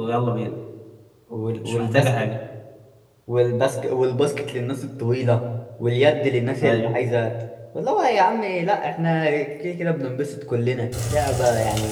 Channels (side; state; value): both; identical; correlation 1.00